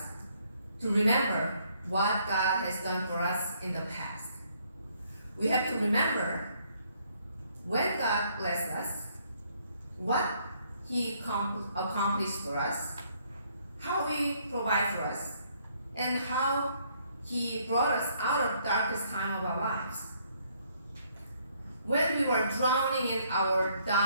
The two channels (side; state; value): both; inverted; correlation -0.68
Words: to remember what God has done for us in the past. We have to remember when God blessed us, what he accomplished for us, how he provided for us, and how he brought us out of the darkest time of our lives. When we were drowning in our